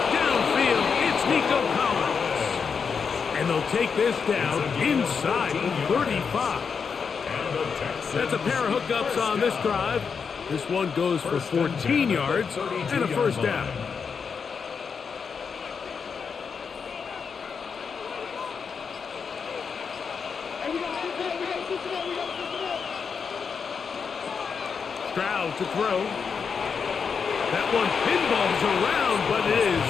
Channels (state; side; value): quieter; right; 6.0 dB